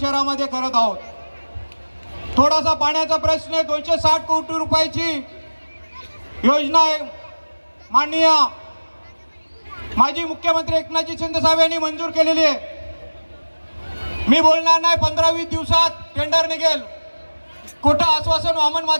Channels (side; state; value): both; inverted; correlation -1.00